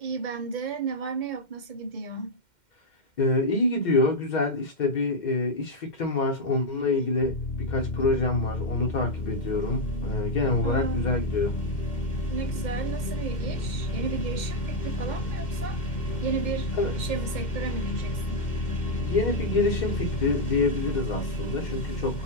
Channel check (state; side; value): late; right; 2.1 ms